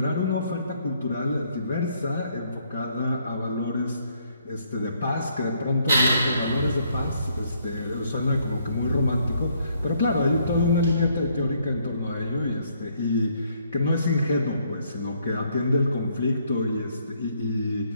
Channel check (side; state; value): both; inverted; correlation -0.69